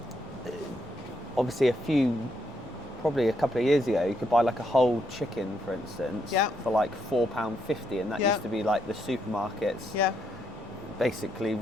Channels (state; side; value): normal; both; correlation 0.77